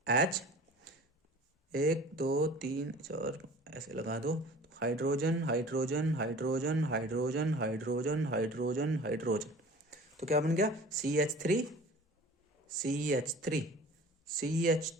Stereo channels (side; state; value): both; normal; correlation 0.44